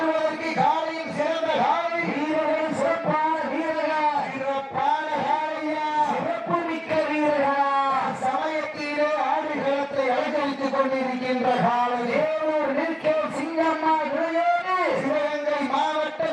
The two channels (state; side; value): identical; both; correlation 1.00